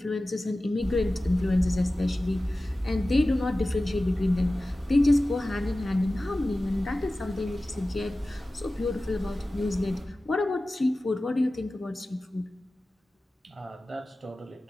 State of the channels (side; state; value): both; normal; correlation 0.96